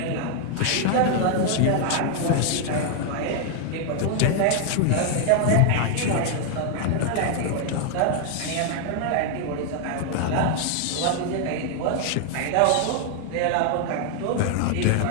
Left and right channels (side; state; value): both; different; correlation 0.00